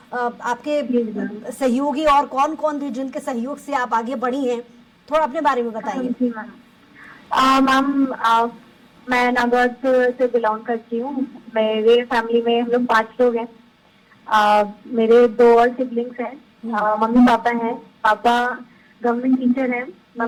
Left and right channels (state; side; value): identical; both; correlation 1.00